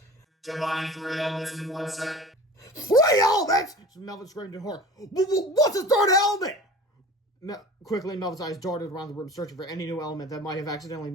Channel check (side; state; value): both; normal; correlation 0.39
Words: Combine 3 elements in 1 second. 3 elements! Melvin screamed in horror. What's the third element? Quickly, Melvin's eyes darted around the room, searching for any new element that might have accidentally